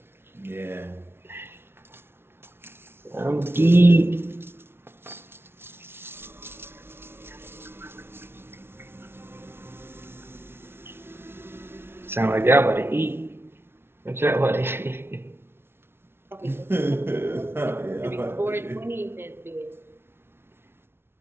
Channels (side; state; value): left; late; 0.12 ms